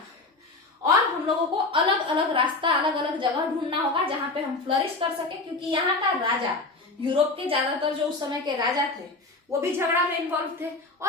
और हम लोगों को अलग अलग रास्ता, अलग अलग जगह ढूंढना होगा जहां पे हम फ्लरिश कर सके। क्योंकि यहाँ का राजा, यूरोप के ज्यादातर जो उस समय के राजा थे, वो भी झगड़ा में इन्वॉल्व थे,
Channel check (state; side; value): quieter; right; 3.3 dB